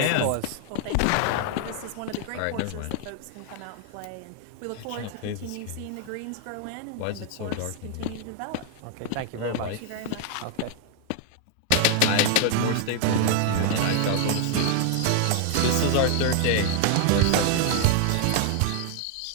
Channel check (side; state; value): both; different; correlation 0.00